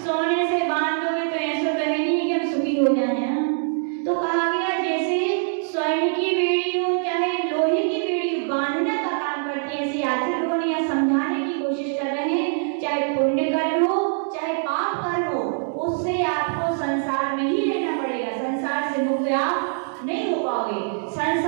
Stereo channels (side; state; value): left; silent; digital silence